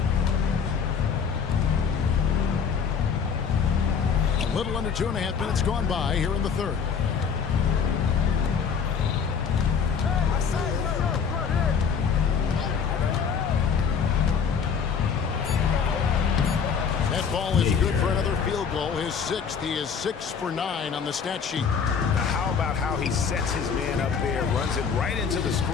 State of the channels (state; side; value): quieter; right; 6.5 dB